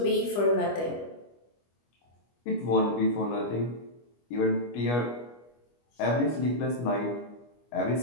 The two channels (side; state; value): right; late; 25 ms